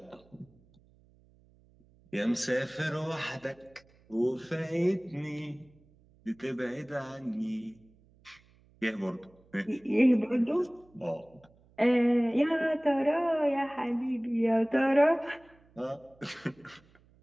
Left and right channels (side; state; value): right; noise; hum, 30 dB below the sound